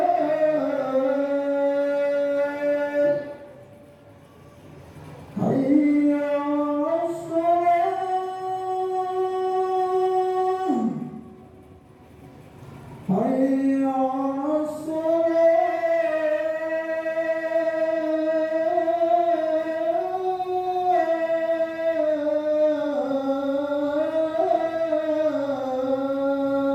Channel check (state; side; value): identical; both; correlation 1.00